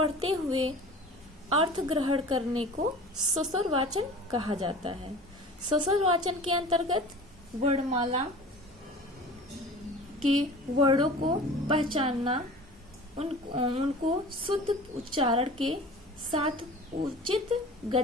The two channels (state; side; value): normal; both; correlation 0.40